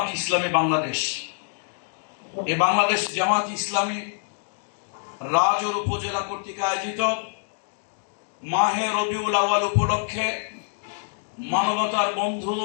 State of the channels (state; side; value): silent; right; digital silence